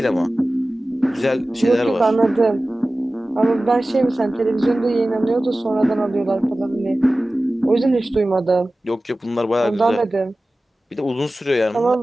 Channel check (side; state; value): both; normal; correlation 0.96